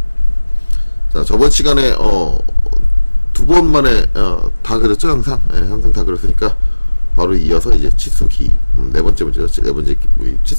자, 저번 시간에 두 번 만에 다 그렸죠, 항상. 항상 다 그렸으니까 바로 이어서 이제 치수 기입, 네 번째 문제죠. 네 번째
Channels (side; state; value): both; inverted; correlation -1.00